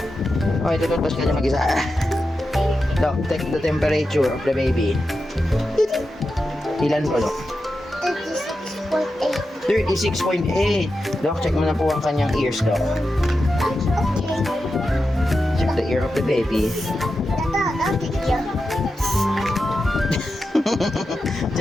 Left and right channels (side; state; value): both; normal; correlation 0.90